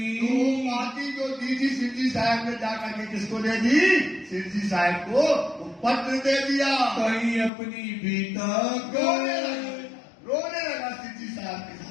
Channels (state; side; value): drops out; right; at 7.5 s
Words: तो पाती जो दी थी सिद्धि साहब ने जाकर के किसको दे दी? सिद्धि साहब को वो पत्र दे दिया। कहीं अपनी बीता रोने लगा सिद्धि साहब के